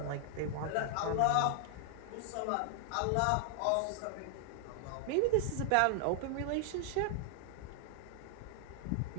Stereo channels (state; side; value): different; both; correlation 0.00